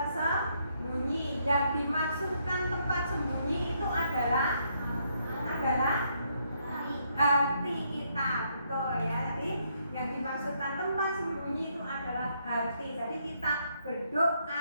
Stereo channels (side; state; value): both; inverted; correlation -0.74